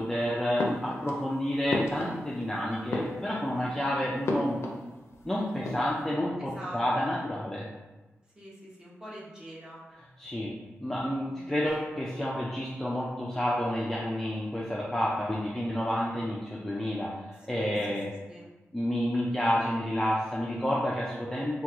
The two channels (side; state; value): both; normal; correlation 0.90